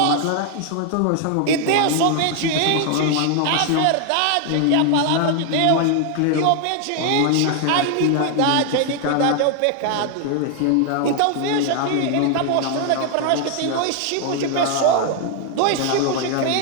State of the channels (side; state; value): both; different; correlation 0.00